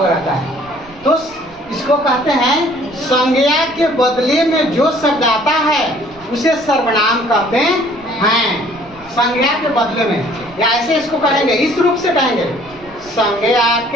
रहता है। तो इसको कहते हैं संज्ञा के बदले में जो शब्द आता है उसे सर्वनाम कहते हैं। संज्ञा के बदले में, या ऐसे इसको कहेंगे, इस रूप से कहेंगे, संज्ञा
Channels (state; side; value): noise; right; rumble, 24 dB below the sound